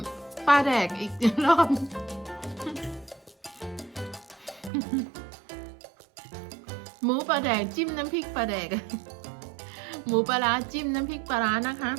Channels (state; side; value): drops out; left; at 4.7 s